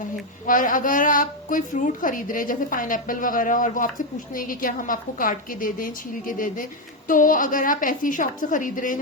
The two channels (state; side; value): normal; both; correlation 0.05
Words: है। और अगर आप कोई फ्रूट खरीद रहे हैं जैसे पाइनएप्पल वगैरह, और वो आपसे पूछते हैं कि क्या हम आपको काट के दे दें, छील के दे दें, तो अगर आप ऐसी शॉप से खरीद रहे हैं